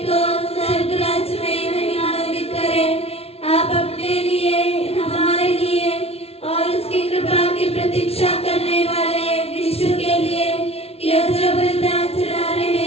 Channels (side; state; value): right; late; 0.30 ms